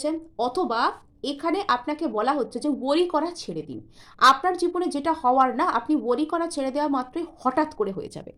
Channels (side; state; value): both; identical; correlation 1.00